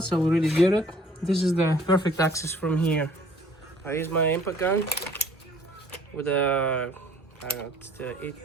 I already did it. This is the perfect access from here. I use my impact gun with a, I don't know, it's the 8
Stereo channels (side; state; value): both; normal; correlation 0.55